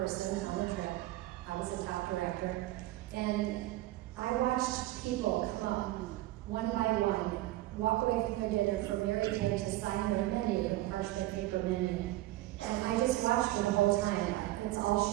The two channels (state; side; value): quieter; left; 16.9 dB